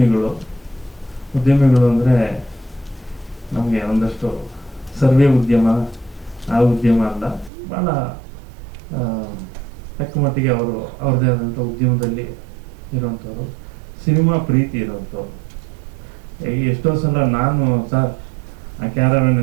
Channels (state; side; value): drops out; left; at 7.5 s